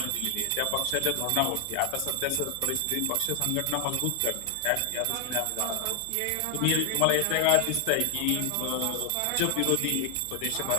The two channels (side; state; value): both; different; correlation 0.00